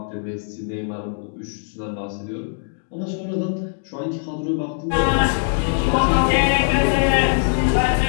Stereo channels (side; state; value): right; silent; digital silence